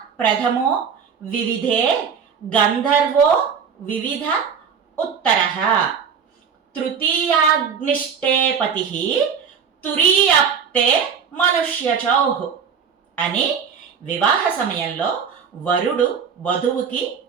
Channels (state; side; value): quieter; left; 6.7 dB